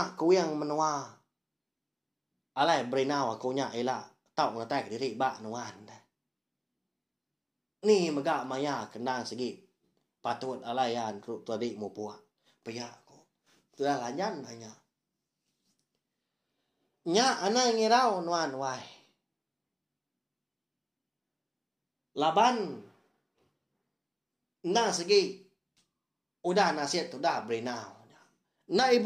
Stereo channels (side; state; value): both; identical; correlation 1.00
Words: ku yang menua alai berinau aku nya ela tau ngatai diri ba nuan ni mega maya kendang segi patut alaian tu tadi mu puak paya aku sudah lanjan hanya nya anak ngirau nuan wai laban na segi udah nasihat udah berinau na